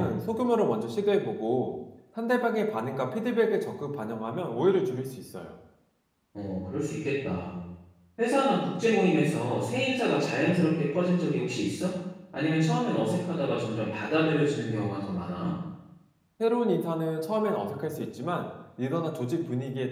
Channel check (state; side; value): identical; both; correlation 1.00